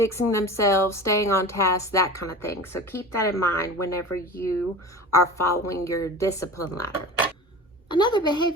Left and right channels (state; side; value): normal; both; correlation 0.34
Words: themselves, staying on task, that kind of thing. So keep that in mind whenever you are following your discipline ladder. Another